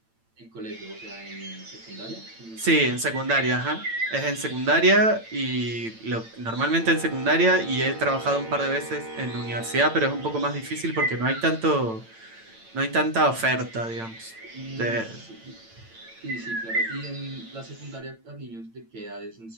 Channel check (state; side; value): late; left; 8.9 ms